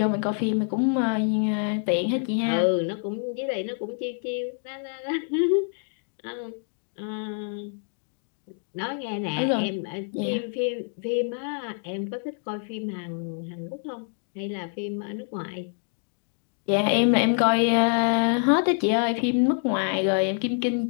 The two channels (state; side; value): silent; right; 59 dB below the other